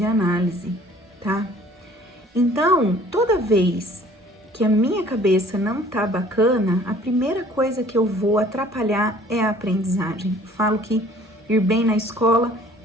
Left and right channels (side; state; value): both; normal; correlation 0.53